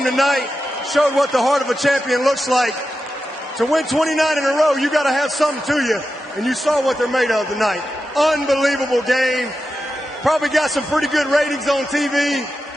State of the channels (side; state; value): both; normal; correlation 0.90